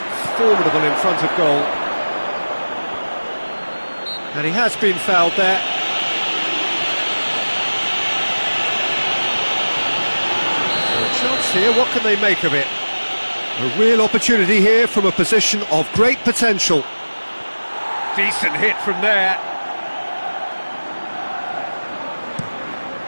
formidable in front of goal. And he has been fouled there. So a chance here, what can they make of it? A real opportunity here from a position of great potential. Decent hit from there.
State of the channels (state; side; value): inverted; both; correlation -1.00